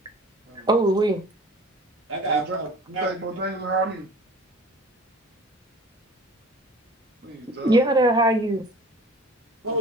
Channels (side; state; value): both; normal; correlation 0.44